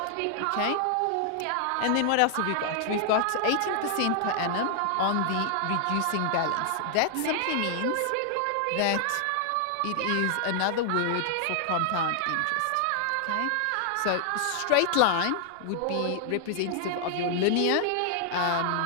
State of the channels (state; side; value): different; both; correlation 0.00